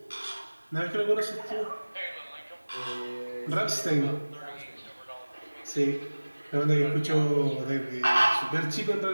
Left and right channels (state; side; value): inverted; both; correlation -1.00